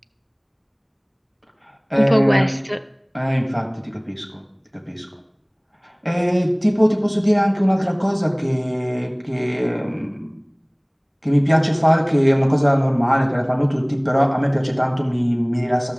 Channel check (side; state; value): both; identical; correlation 1.00